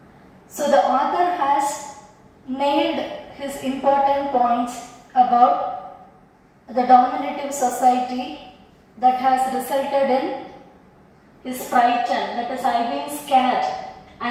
So the author has nailed his important points about the dominative society that has resulted in his frightened, that is, I've been scared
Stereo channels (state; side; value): identical; both; correlation 1.00